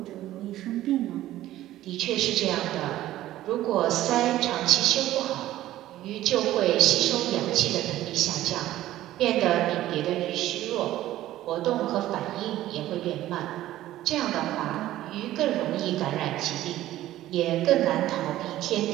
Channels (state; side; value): quieter; left; 14.4 dB